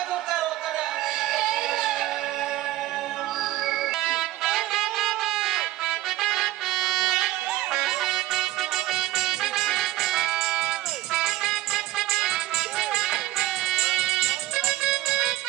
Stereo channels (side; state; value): left; quieter; 15.6 dB